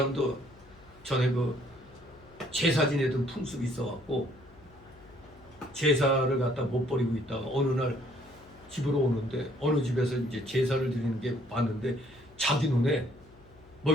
전에 그 제사 지내던 풍습이 있어갖고 제사를 갖다 못 버리고 있다가 어느 날 집으로 오는데 어느 집에서 이제 제사를 드리는 게 봤는데 자기 눈에 뭐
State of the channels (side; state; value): left; noise; hum, 26 dB below the sound